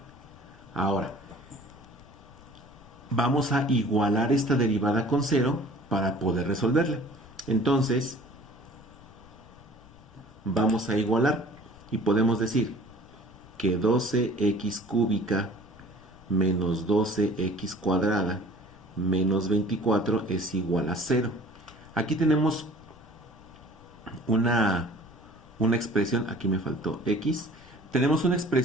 Ahora, vamos a igualar esta derivada con 0 para poder resolverla. Entonces, vamos a igualar y podemos decir que 12x cúbica menos 12x cuadrada menos 24 es igual a 0. Aquí tenemos una expresión, aquí me faltó x, tenemos una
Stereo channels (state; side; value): noise; left; rumble, 24 dB below the sound